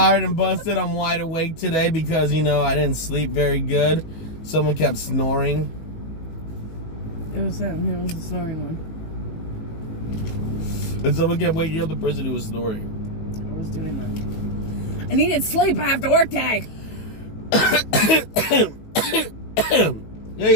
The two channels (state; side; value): late; right; 19 ms